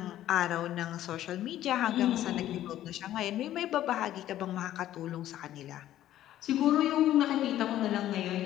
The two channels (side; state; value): right; quieter; 12.8 dB